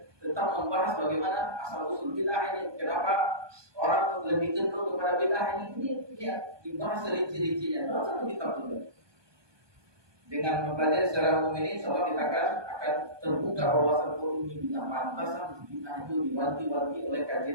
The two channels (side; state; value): left; late; 1.2 ms